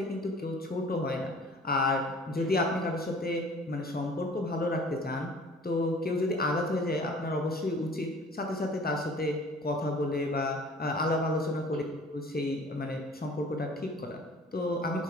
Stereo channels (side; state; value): both; normal; correlation 0.49